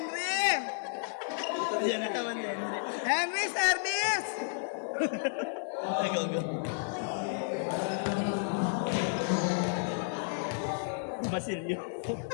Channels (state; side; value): silent; right; digital silence